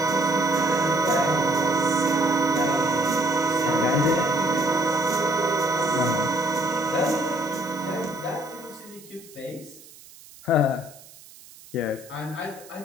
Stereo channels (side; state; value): right; noise; hiss, 21 dB below the sound